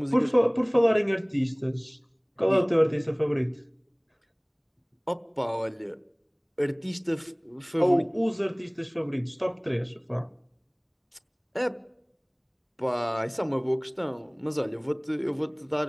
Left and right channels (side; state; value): both; identical; correlation 1.00